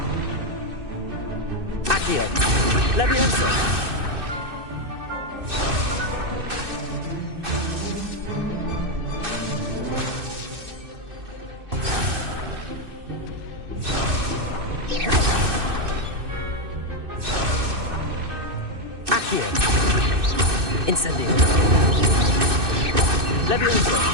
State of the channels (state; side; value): late; left; 2.6 ms